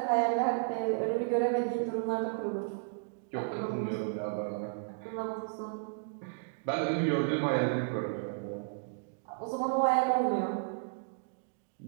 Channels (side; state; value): left; silent; digital silence